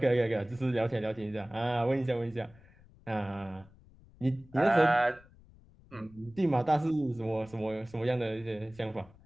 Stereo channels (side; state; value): left; noise; rumble, 25 dB below the sound